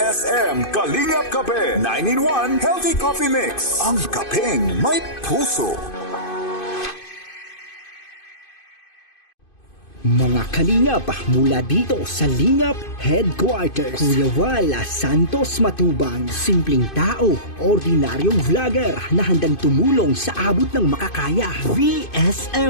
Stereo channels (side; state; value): right; late; 2.5 ms